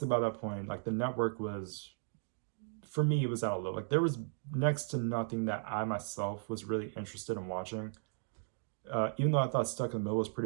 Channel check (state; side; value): silent; left; digital silence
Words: by that point, like the network was, for me, it was out of low. Like there was next to nothing that I myself was really interested in watching. Even though I thought Stuck in the Middle was